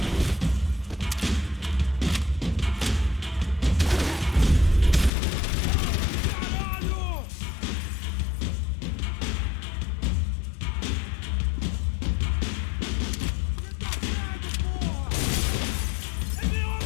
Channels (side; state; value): right; drops out; at 5.1 s